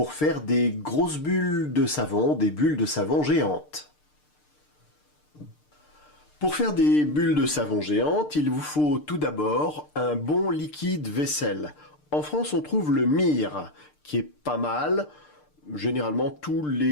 faire des grosses bulles de savon, des bulles de savon géantes. Pour faire des bulles de savon géantes, il vous faut tout d'abord un bon liquide vaisselle. En France, on trouve le Mire, qui est pas mal. Généralement, tous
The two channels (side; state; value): right; late; 6.7 ms